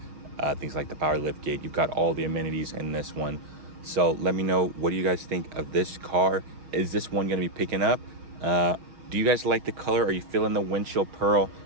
things like the power lift gate. You've got all the amenities in this one. So let me know, what do you guys think of this car? Is this one going to be picking up? Do you guys like the color? Are you feeling the windshield pearl?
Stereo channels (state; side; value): late; left; 6.5 ms